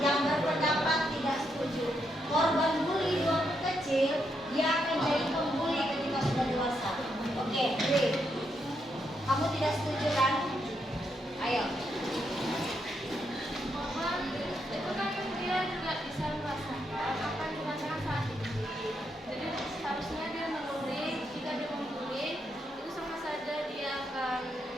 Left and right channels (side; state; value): both; normal; correlation 0.79